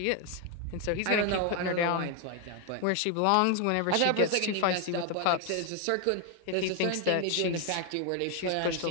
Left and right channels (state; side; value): different; both; correlation 0.01